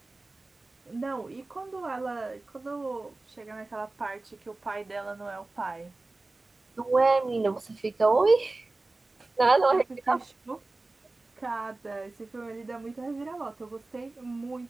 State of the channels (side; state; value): left; quieter; 3.2 dB